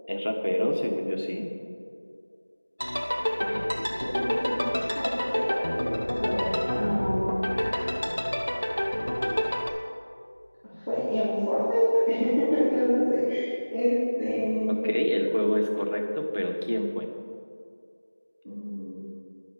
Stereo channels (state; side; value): inverted; both; correlation -1.00